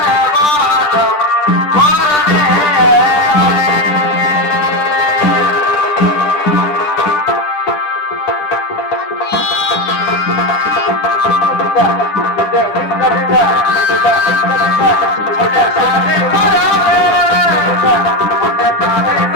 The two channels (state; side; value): late; right; 10 ms